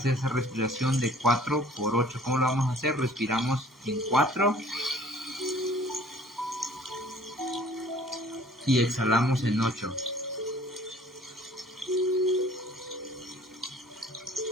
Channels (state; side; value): normal; both; correlation 0.52